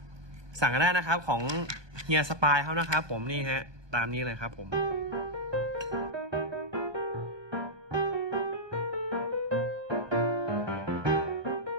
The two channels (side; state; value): left; late; 1.2 ms